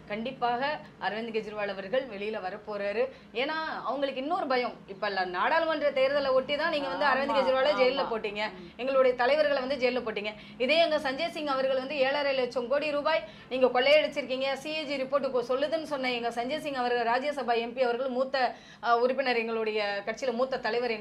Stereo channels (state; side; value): identical; both; correlation 1.00